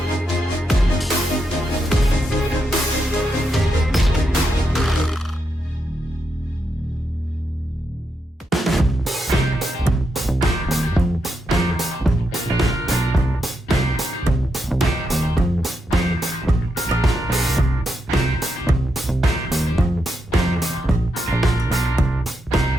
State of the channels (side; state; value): both; normal; correlation 0.83